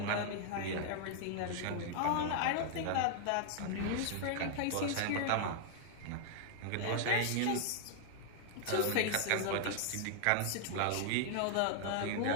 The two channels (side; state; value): both; different; correlation 0.00